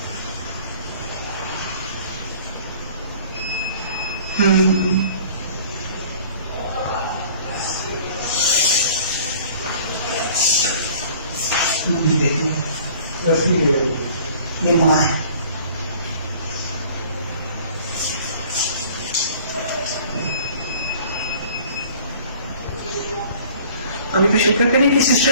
ये माँ है। अभी भी शुक्र करें कि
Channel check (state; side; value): inverted; both; correlation -0.50